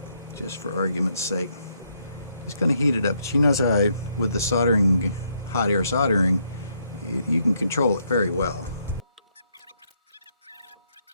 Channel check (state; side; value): inverted; both; correlation -0.74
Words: just for argument's sake. Just going to heat it up. She knows how with the soldering, hot air soldering, you can control it very well.